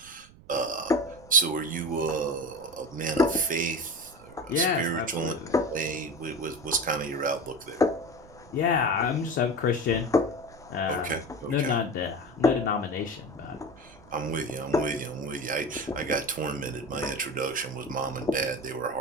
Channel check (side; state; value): right; noise; rumble, 23 dB below the sound